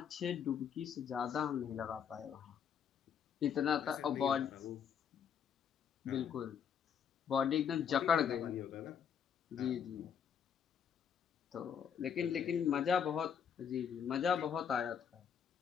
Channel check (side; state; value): right; quieter; 7.8 dB